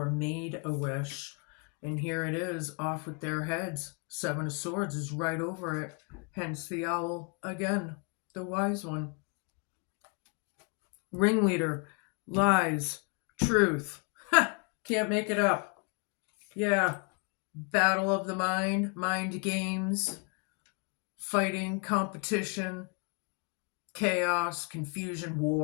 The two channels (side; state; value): right; quieter; 35.3 dB